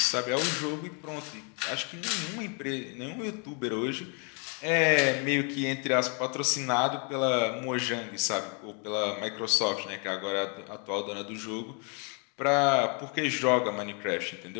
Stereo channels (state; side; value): quieter; right; 36.6 dB